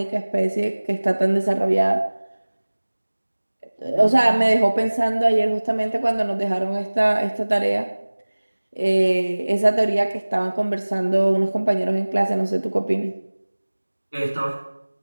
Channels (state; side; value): inverted; both; correlation -1.00